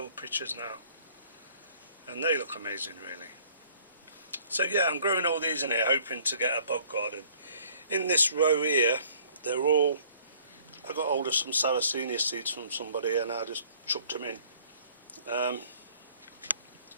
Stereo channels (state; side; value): inverted; both; correlation -0.57